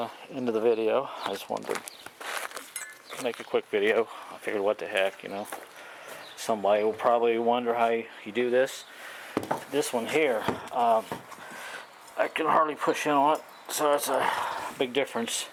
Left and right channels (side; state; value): both; identical; correlation 1.00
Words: end of the video. I just wanted to make a quick video. I figured, what the heck, you know. Somebody will probably wonder how you do this. This one here, I can hardly push in on it, so that's a big difference.